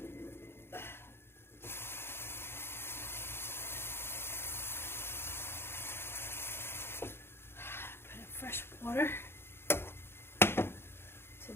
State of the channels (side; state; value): right; late; 0.11 ms